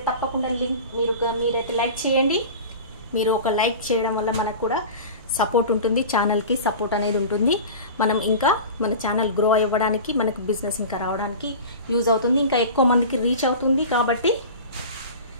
తప్పకుండా లింక్ మీరైతే లైక్ చేయండి. మీరు ఒక లైక్ చేయడం వల్ల మనకు కూడా సపోర్ట్ ఉంటుంది, ఛానల్కి సపోర్ట్ అనేది ఉంటుంది. మనం ఇంకా మన ఛానల్ గ్రో అవ్వడానికి, మనకు బిజినెస్ ఇంకా రావడానికి యూజ్ అవుతుంది, ఇంకా ఎక్కువ మందికి రీచ్ అవుతుంది. కాబట్టి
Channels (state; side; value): inverted; both; correlation -0.34